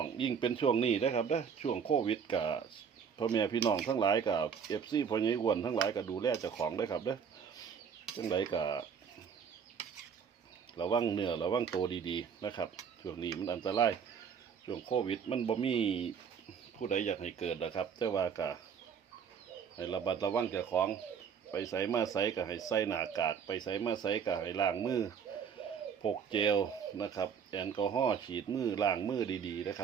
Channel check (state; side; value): quieter; left; 7.1 dB